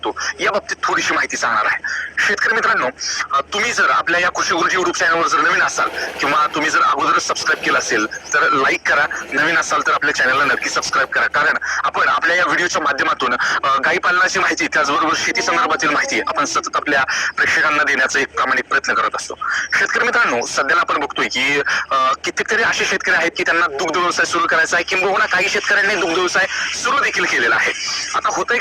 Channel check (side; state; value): both; identical; correlation 1.00